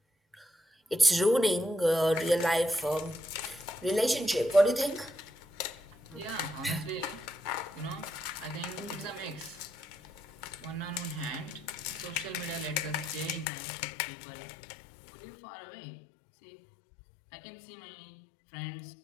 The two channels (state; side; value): drops out; right; at 13.5 s